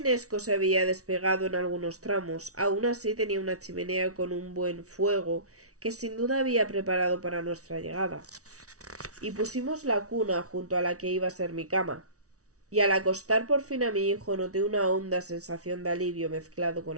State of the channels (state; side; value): late; left; 0.66 ms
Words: se había despegado en algunos tramos. Aún así tenía una chimenea con un buen fuego que sin duda había preparado para nuestra llegada. Y pusimos la cuna junto a la que iba a ser mi cama. Y al acostar por fin a mi hijo noté una honda sensación de alivio mezclado con